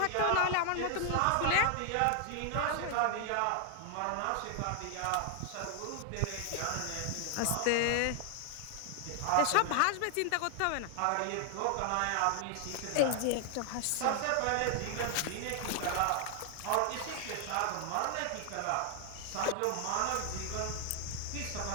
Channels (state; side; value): different; both; correlation 0.00